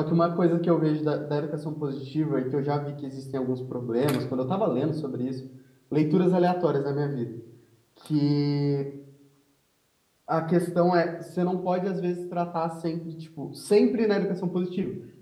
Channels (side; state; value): both; identical; correlation 1.00